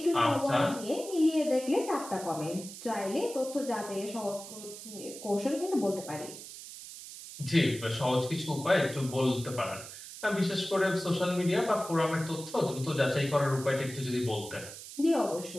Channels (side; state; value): right; noise; hiss, 13 dB below the sound